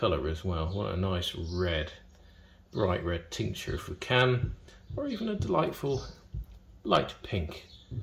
as well. What a nice red, bright red tincture if we can, or even a delightful light pink.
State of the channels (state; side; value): identical; both; correlation 1.00